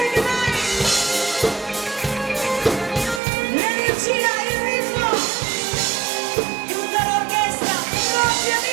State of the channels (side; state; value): left; drops out; at 3.2 s